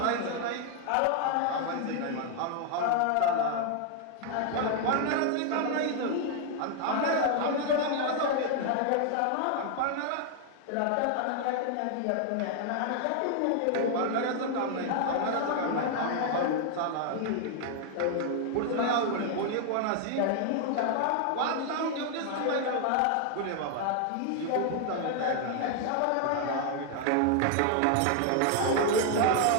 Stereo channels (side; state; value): both; different; correlation 0.00